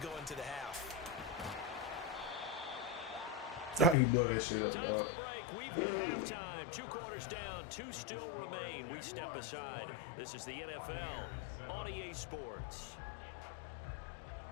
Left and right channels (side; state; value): right; drops out; at 4.0 s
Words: into the half. I can blow that shit up, Time dog. for a break. We've hit halftime. 2 quarters down, 2 still remain. We step aside. This is the NFL on EA Sports.